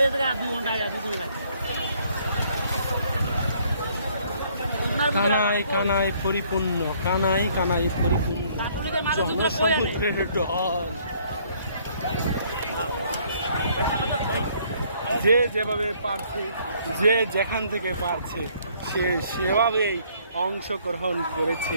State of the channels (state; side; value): inverted; both; correlation -0.63